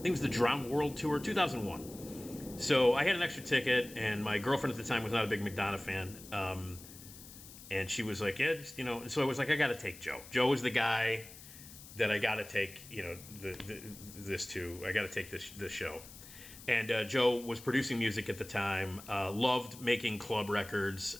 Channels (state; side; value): noise; left; hiss, 17 dB below the sound